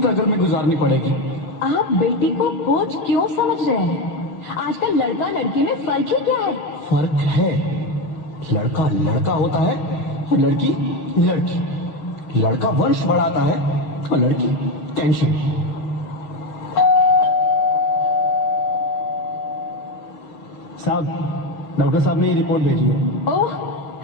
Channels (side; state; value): right; late; 6.2 ms